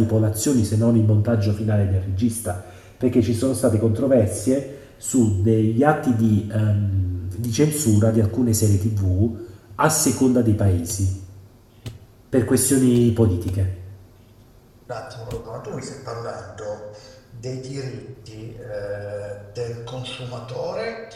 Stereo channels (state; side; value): identical; both; correlation 1.00